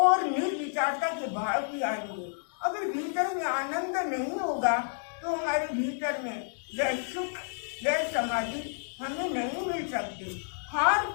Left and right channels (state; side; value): silent; right; digital silence